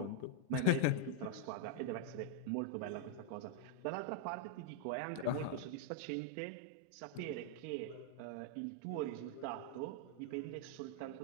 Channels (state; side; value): different; both; correlation 0.00